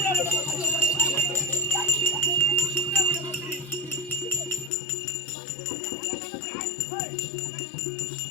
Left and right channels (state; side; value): drops out; right; at 4.7 s